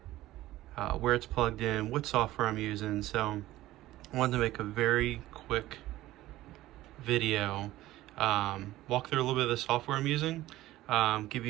where it's plugged in, what software I'm using. So I wanted to make a very quick video, walk through a little bit of the software I'm using, give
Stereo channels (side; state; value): left; quieter; 15.9 dB